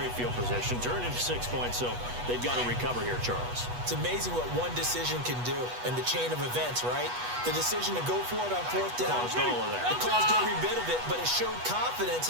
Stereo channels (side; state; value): left; late; 8.2 ms